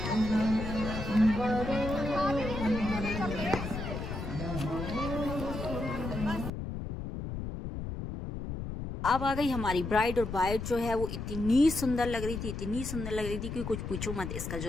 अब आ गई हमारी ब्राइड, और ब्राइड जो है वो इतनी सुंदर लग रही थी, इतनी सुंदर लग रही थी कि कुछ पूछो मत। इसका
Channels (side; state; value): left; noise; rumble, 6 dB below the sound